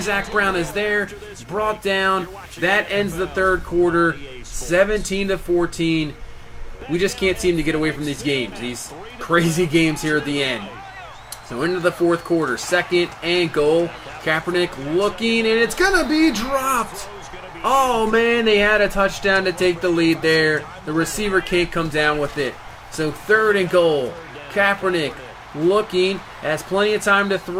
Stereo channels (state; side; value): identical; both; correlation 1.00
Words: Brown is there. Brought down. That ends the third quarter, 17-14. We just can't seem to get away from these games. These crazy games here at the end. So into the fourth quarter, 2nd and goal. Kaepernick looking, and it's going to be dropped. Oh, man, they had a touchdown to take the lead there. The receiver can't come down with it. So 3rd and goal. Kaepernick looking, has plenty of time to